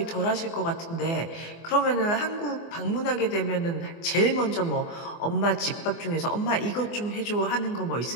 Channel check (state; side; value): late; right; 24 ms